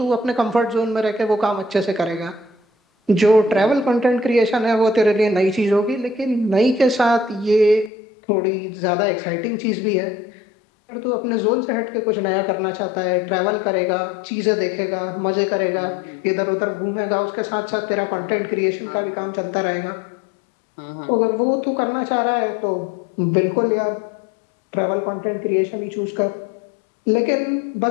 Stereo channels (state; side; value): drops out; right; at 7.9 s